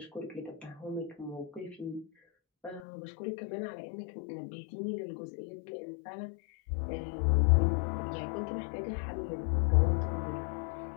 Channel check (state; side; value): drops out; right; at 2.8 s